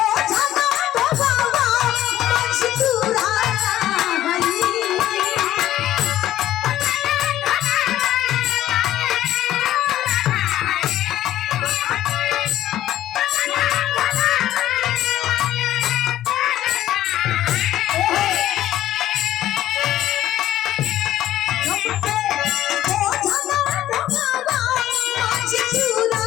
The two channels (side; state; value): right; quieter; 13.2 dB